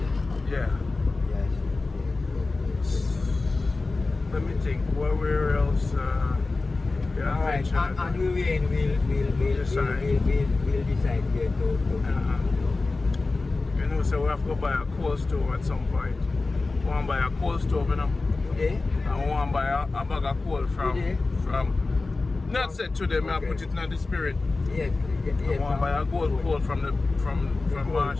Yeah. Yes. Let me think. Where else? Yeah, All right, and we'll decide where to. You know, so we have to go buy a coal stove at some point. We want to buy a coal stove, you know. Today? And we want to buy a bag of coal from not said to them, I put it in the spirit. Yes. I want to buy a gold coal from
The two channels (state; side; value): quieter; right; 3.6 dB